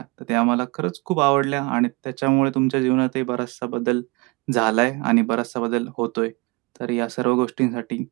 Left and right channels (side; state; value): left; quieter; 26.3 dB